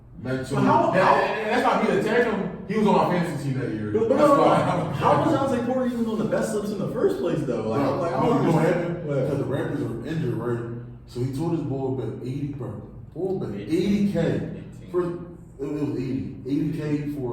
Mental. But how- And that's not me attacking him. He was on my fantasy team that year. But That's why. how was Jonte Porter even on the best list in the first place though? Like, I'm like, I you don't know what understand. happened? Because the Raptors were injured, right? So he told his boy bet 80, bro. Boy bet 80K. For, it was 80K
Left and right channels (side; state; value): both; identical; correlation 1.00